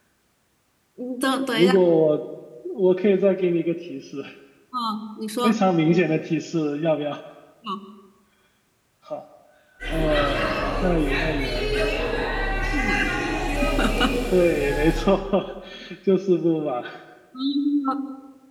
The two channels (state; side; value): identical; both; correlation 1.00